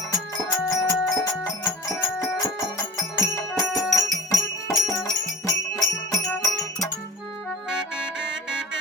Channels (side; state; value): both; normal; correlation 0.39